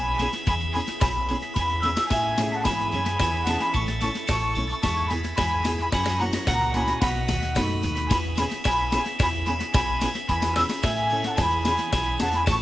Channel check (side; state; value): both; normal; correlation 0.94